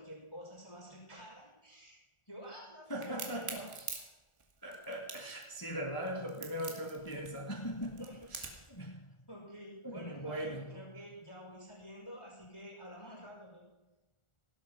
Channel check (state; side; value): late; right; 1.4 ms